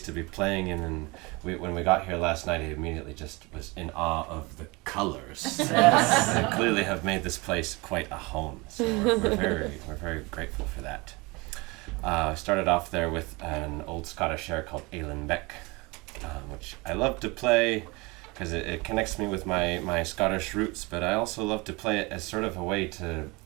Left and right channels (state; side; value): quieter; left; 25.4 dB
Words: to be playing in, and when we got here last night, I immediately just was in awe of the colors. They clearly have made this place quite a home, so we're very grateful for that. I started off there with an old Scottish air called Ailen Beck, which I love to play because it connects me with my Scottish roots, but I also love to play it as sort of a way to